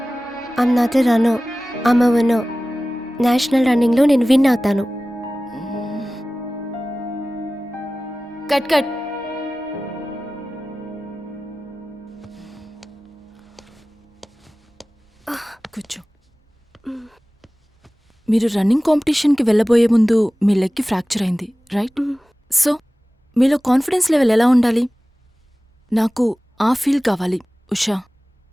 I'm not a runner, I'm a winner. National రన్నింగ్లో నేను win అవుతాను. Cut cut. కూర్చో. మీరు running కాంపిటీషన్కి వెళ్ళబోయే ముందు మీ లెగ్కి ఫ్రాక్చర్ అయింది, రైట్? సో మీలో కాన్ఫిడెన్స్ లెవెల్ ఎలా ఉండాలి? నాకు ఆ ఫీల్ కావాలి, Usha.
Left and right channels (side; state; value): both; normal; correlation 0.97